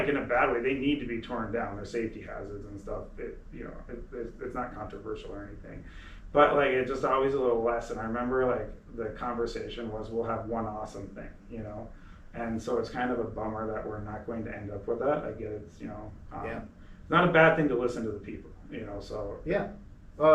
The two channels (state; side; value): identical; both; correlation 1.00